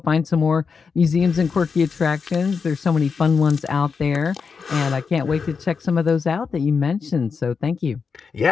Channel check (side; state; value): right; quieter; 5.5 dB